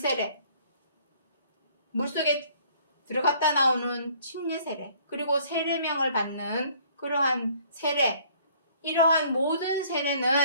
물속에 들어갔다 나오는 침례 세례, 그리고 세례명을 받는 그러한 세례, 이러한 모든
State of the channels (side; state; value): both; inverted; correlation -0.58